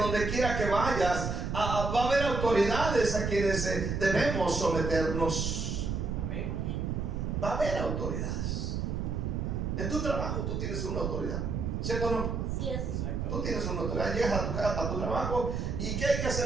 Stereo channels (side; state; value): right; noise; rumble, 2 dB below the sound